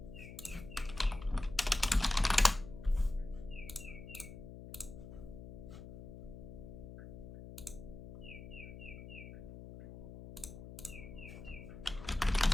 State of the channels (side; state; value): left; noise; hum, 12 dB below the sound